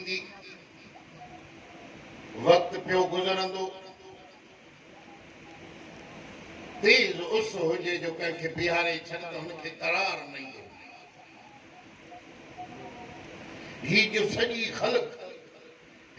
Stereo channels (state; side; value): identical; both; correlation 1.00